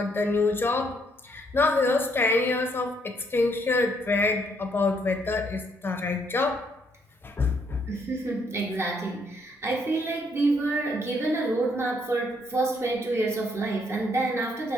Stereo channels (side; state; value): both; normal; correlation 0.71